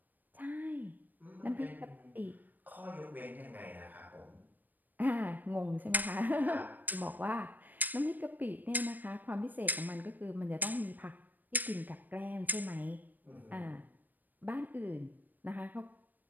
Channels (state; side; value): late; left; 0.087 ms